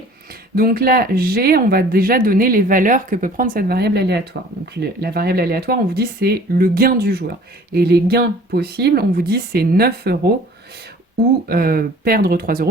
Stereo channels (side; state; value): both; normal; correlation 0.49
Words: Donc là, G, on va déjà donner les valeurs que peut prendre cette variable aléatoire. Donc la variable aléatoire, on vous dit c'est le gain du joueur. Et les gains possibles, on vous dit c'est 9 euros ou perdre 3